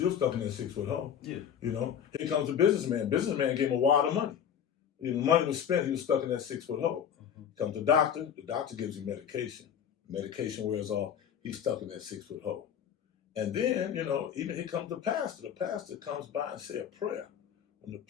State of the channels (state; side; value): quieter; right; 8.6 dB